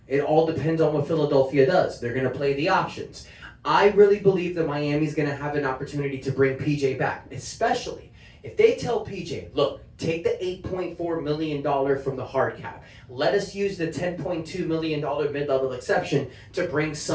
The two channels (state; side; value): identical; both; correlation 1.00